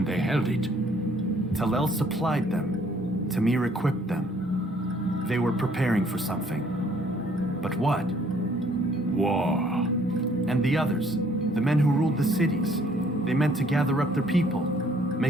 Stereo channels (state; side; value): normal; both; correlation 0.62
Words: they held it. Talel supplied them. Tamir equipped them. They were preparing for something. But what? War. And the others, the men who ruled the cities, they meant to gather up their people,